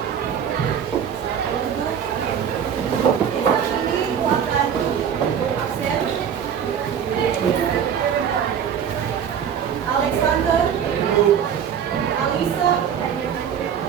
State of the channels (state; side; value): quieter; left; 8.2 dB